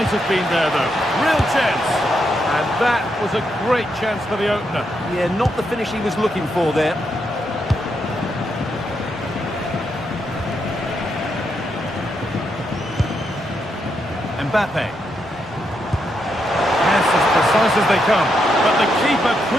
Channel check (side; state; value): both; normal; correlation 0.81